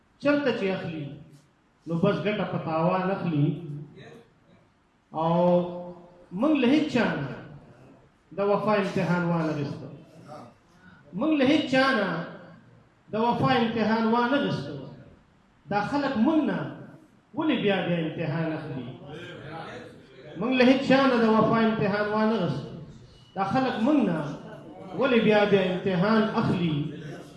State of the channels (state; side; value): identical; both; correlation 1.00